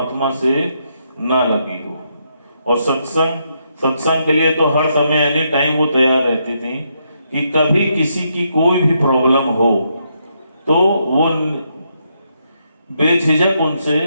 से ना लगी हो। और सत्संग के लिए तो हर समय एनी टाइम वो तैयार रहती थी कि कभी किसी की कोई भी प्रॉब्लम हो तो वो बेझिझक उनसे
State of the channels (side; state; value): both; inverted; correlation -0.78